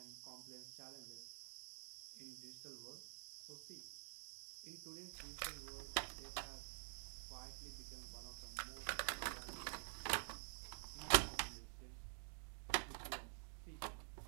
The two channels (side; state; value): left; silent; digital silence